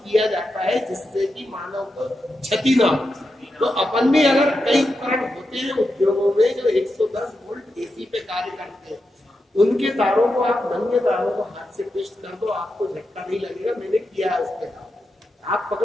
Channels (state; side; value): normal; both; correlation 0.87